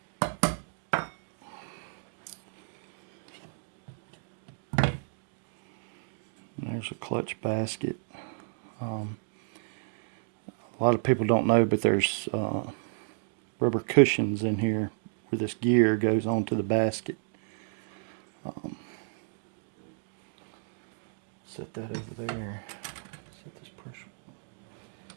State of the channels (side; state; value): left; silent; digital silence